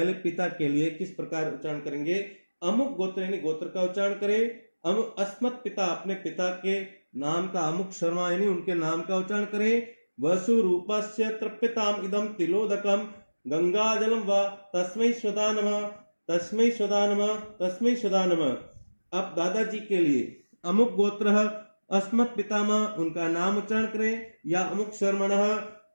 पिता के लिए किस प्रकार उच्चारण करेंगे। अमुक गोत्र यानी गोत्र का उच्चारण करें। अमुक अस्मत् पिता अपने पिता के नाम का, अमुक शर्मा यानी उनके नाम का उच्चारण करें। वसु रूपस्य तृप्यताम इदम तिलोदकम गंगाजलम व तस्मै स्वधा नमः, तस्मै स्वधा नमः, तस्मै स्वधा नमः। अब दादाजी के लिए अमुक गोत्र अस्मत् पितामह उनका नाम उच्चारण करें, या अमुक शर्मणः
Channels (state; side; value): inverted; both; correlation -1.00